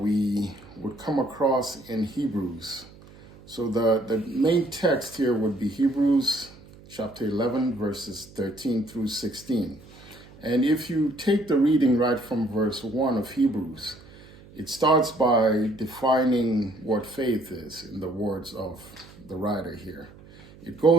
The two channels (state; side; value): noise; right; hum, 22 dB below the sound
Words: would come across in Hebrews. So the main text here would be Hebrews chapter 11, verses 13 through 16. And if you take the reading right from verse 1 of Hebrews, it starts by defining what faith is in the words of the writer here. It